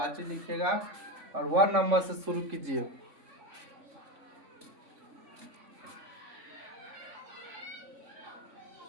लिखिएगा और 1 नंबर से शुरू कीजिए।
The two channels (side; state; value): left; late; 3.5 ms